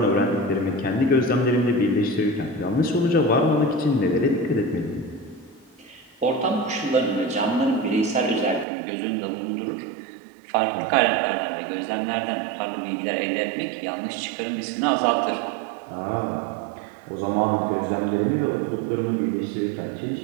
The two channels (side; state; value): left; drops out; at 8.7 s